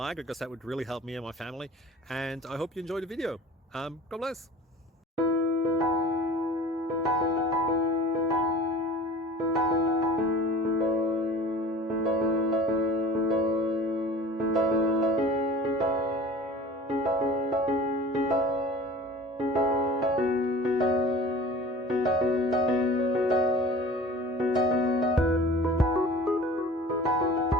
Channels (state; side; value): normal; both; correlation 0.41